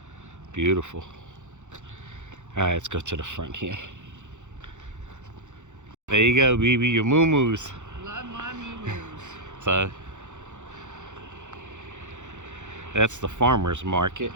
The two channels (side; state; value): left; late; 0.85 ms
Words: Beautiful. All right, let's go to the front here. There you go, BB, your moo-moos. Love my moo-moos. So that's the farmer's market,